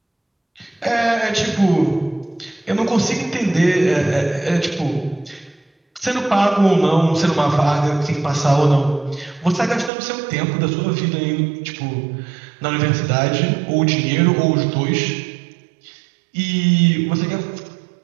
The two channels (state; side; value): drops out; left; at 9.9 s